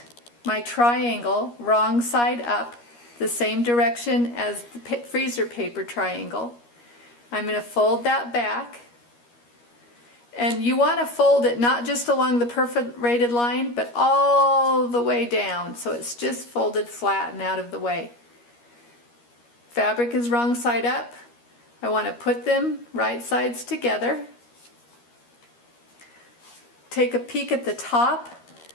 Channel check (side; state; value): right; late; 13 ms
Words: my triangle wrong side up, the same direction as the freezer paper triangle. I'm going to fold that back. And you want to fold it not just along the perforated line, but all the way down, so it's just folded flat and out of the way. Fabric is wrong side up. I want to put them right sides together. Take a peek at the top.